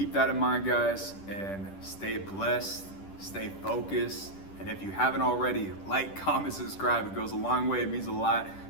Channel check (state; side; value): late; right; 10 ms